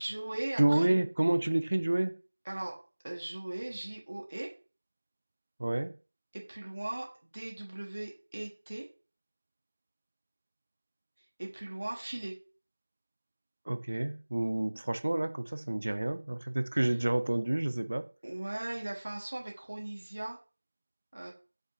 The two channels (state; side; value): inverted; both; correlation -1.00